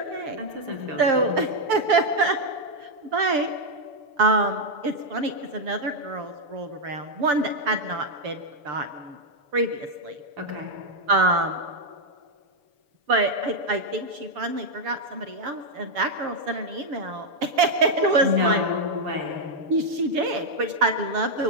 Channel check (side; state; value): left; late; 6.8 ms